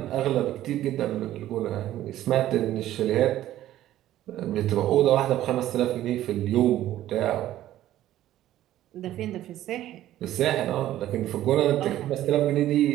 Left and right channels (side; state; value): left; quieter; 13.5 dB